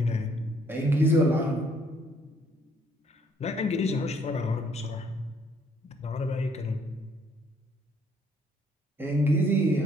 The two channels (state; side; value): normal; both; correlation 0.65